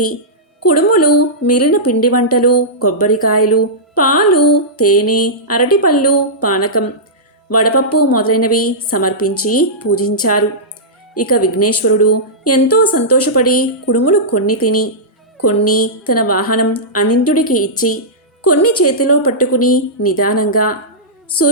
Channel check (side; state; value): both; normal; correlation -0.14